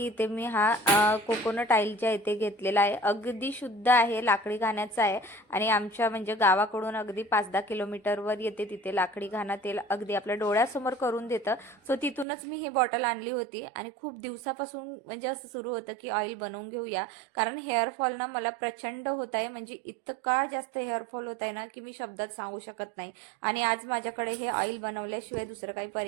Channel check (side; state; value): left; drops out; at 12.2 s